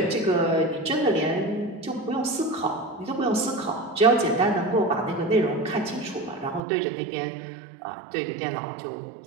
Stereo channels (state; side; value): drops out; left; at 6.6 s